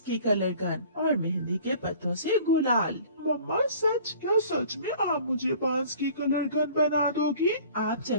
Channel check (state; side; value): inverted; both; correlation -0.49